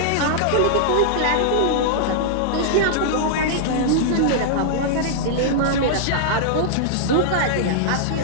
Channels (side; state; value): both; different; correlation -0.01